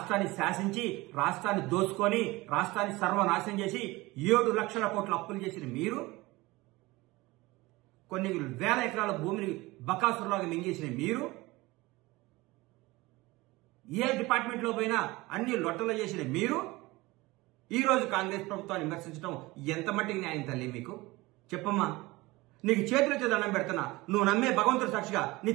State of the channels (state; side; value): quieter; left; 21.1 dB